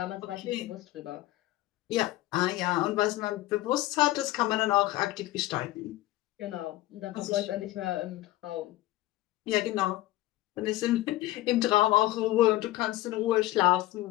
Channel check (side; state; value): right; quieter; 16.6 dB